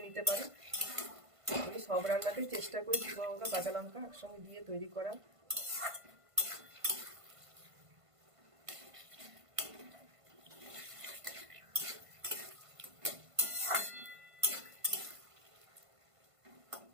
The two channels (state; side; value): late; left; 1.5 ms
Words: নিতে পারো। আমি সব রান্নাতেই চেষ্টা করি শুকনো লঙ্কা, কাঁচা লঙ্কা একসঙ্গে দিয়ে তৈরি করা।